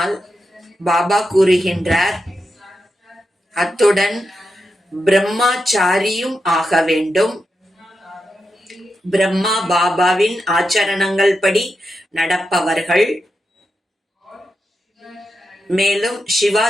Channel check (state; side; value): normal; both; correlation 0.87